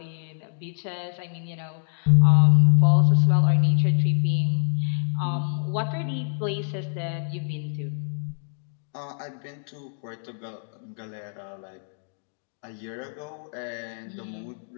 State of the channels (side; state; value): right; silent; digital silence